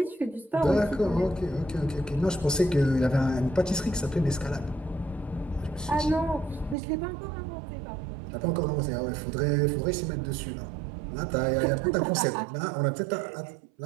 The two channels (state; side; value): drops out; left; at 6.8 s